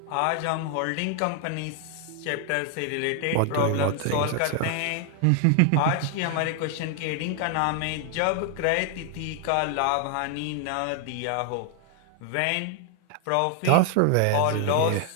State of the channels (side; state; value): both; different; correlation 0.00